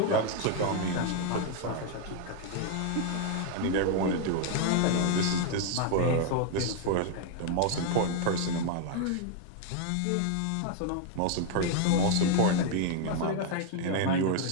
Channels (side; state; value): both; different; correlation 0.00